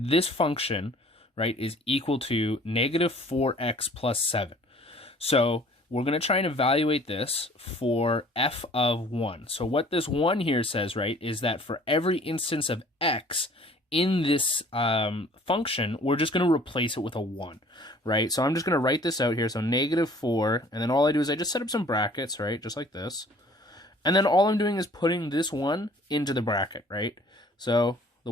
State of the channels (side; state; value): both; normal; correlation 0.53